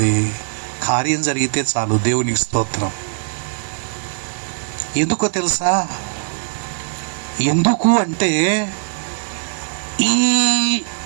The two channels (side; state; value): left; silent; digital silence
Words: కార్యం జరిగితే చాలు. దేవునికి స్తోత్రం. ఎందుకో తెలుసా? ఎందుకు అంటే ఈ